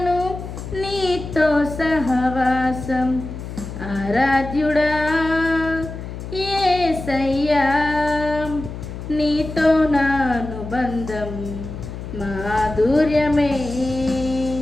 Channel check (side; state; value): left; noise; hum, 9 dB below the sound